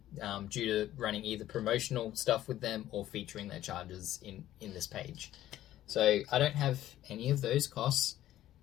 due to running either promotional stuff with them or featuring their chargers in this page. So I don't have any of those costs.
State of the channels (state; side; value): quieter; right; 13.3 dB